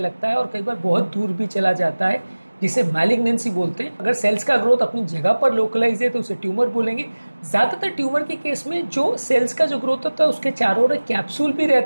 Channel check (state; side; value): inverted; both; correlation -1.00